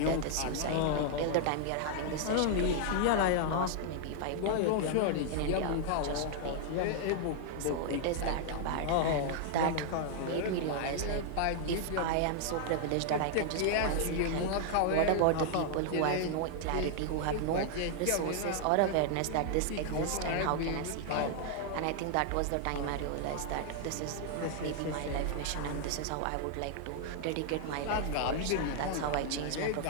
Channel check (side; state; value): both; different; correlation -0.01